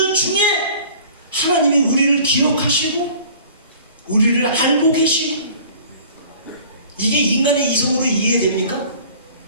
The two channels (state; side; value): inverted; both; correlation -0.48